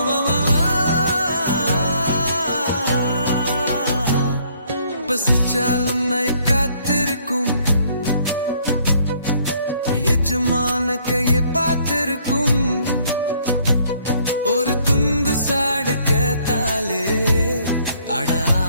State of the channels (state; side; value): inverted; both; correlation -0.64